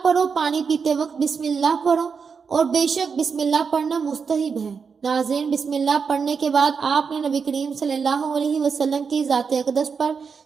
پڑھو، پانی پیتے وقت بسم اللہ پڑھو اور بے شک بسم اللہ پڑھنا مستحب ہے۔ ناظرین، بسم اللہ پڑھنے کے بعد آپ نے نبی کریم صلی اللہ علیہ وسلم کی ذات اقدس پر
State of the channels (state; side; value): quieter; left; 5.8 dB